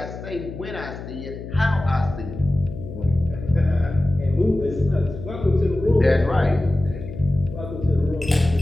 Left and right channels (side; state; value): left; noise; hum, 11 dB below the sound